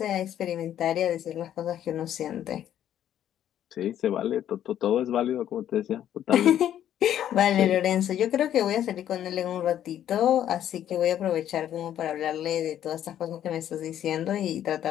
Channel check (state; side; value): quieter; right; 10.9 dB